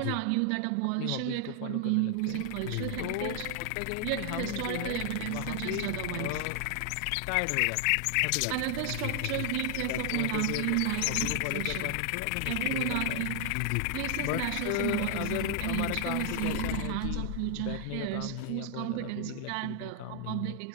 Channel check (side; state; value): both; different; correlation 0.00